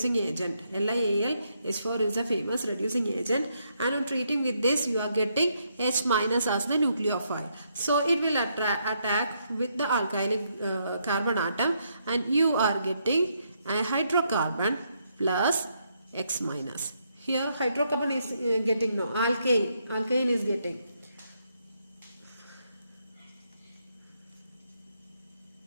agent. LiAlH4 is a famous reducing agent, and on treating with this you are getting H minus as the nucleophile. So it will attack with the alkylic carbon atom, and you are getting a hydrocarbon plus X minus. Here hydrocarbon is getting no, alkane is getting.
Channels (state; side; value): inverted; both; correlation -0.76